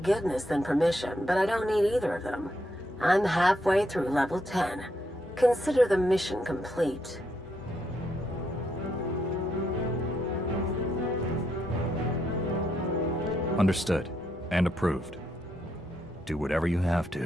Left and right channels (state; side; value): normal; both; correlation 0.78